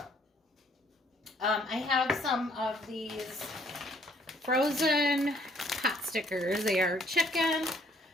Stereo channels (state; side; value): normal; both; correlation 0.64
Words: I have some of these frozen pot stickers. They are chicken.